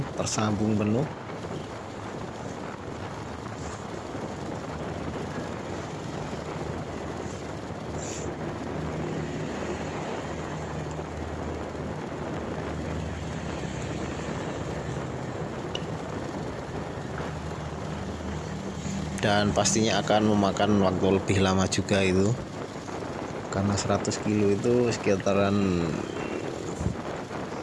tersambung penuh. Dan pastinya akan memakan waktu lebih lama juga itu, karena 100 kilo itu sekitaran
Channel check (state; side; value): identical; both; correlation 1.00